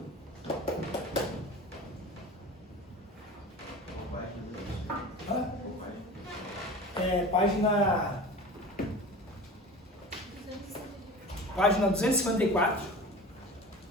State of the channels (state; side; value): normal; both; correlation 0.36